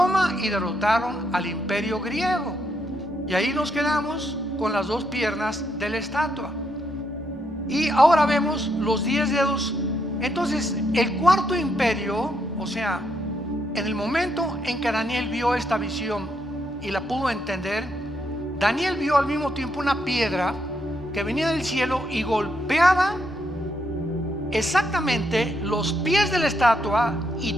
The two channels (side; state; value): both; normal; correlation 0.77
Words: y derrotaron al imperio griego. Y ahí nos quedamos con las 2 piernas de la estatua. Y ahora vemos los 10 dedos. Entonces el 4.º imperio, o sea, en el momento en que Daniel vio esta visión y la pudo entender, Daniel vio al mismo tiempo una piedra que venía del cielo y golpeaba exactamente los pies de la estatua,